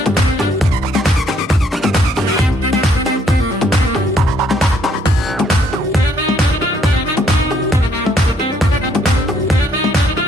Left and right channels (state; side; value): normal; both; correlation 0.67